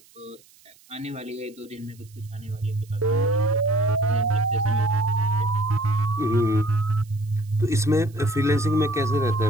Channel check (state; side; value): noise; right; hiss, 28 dB below the sound